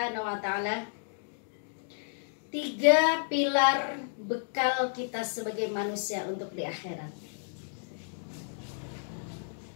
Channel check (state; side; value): silent; right; digital silence